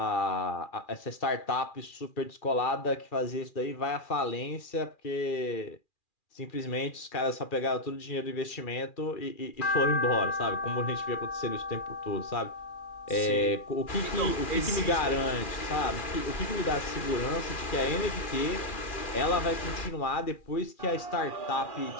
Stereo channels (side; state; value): right; late; 2.4 ms